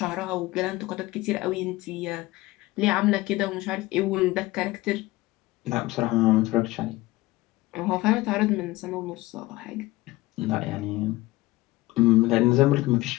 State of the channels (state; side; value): quieter; right; 19.1 dB